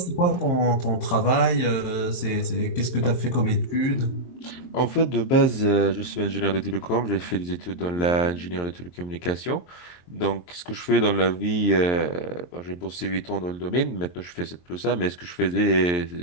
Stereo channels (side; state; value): right; late; 23 ms